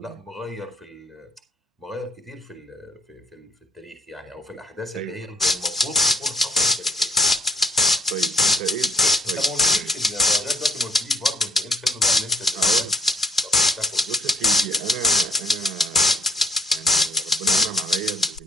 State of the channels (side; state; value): both; normal; correlation 0.62